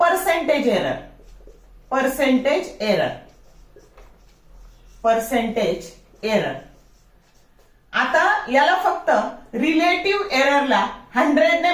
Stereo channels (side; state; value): both; identical; correlation 1.00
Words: error. Percentage error. Percentage error. आता याला फक्त रिलेटिव्ह एररला 100 ने